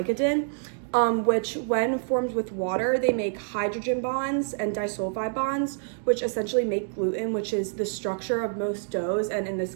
which when formed with water, they make hydrogen bonds and disulfide bonds, which essentially make gluten, which is the structure of most doughs, and in this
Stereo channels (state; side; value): silent; left; digital silence